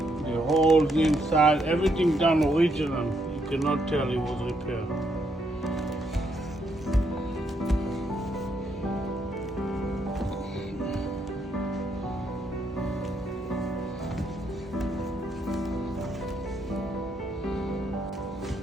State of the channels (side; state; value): both; normal; correlation 0.75